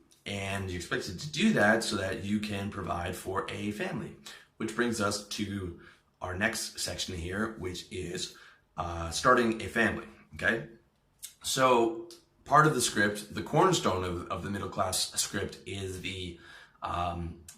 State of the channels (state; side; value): identical; both; correlation 1.00